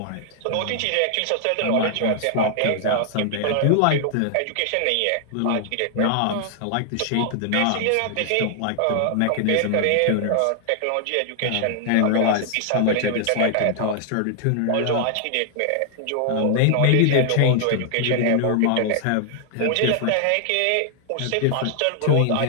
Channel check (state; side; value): different; both; correlation 0.00